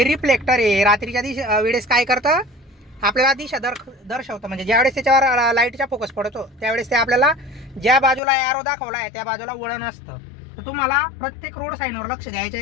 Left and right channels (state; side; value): drops out; right; at 8.2 s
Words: रिफ्लेक्टर आहे. रात्रीच्या वेळेस काय करतं, आपल्याला दिशा दर्शवतं. म्हणजे ज्यावेळेस त्याच्यावर लाईटचा फोकस पडतो त्यावेळेस ते आपल्याला ज्या बाजूला ॲरो दाखवला आहे त्या बाजूला वळण असतं. तर तुम्हाला प्रत्येक रोड साईनवर लक्ष द्यायचं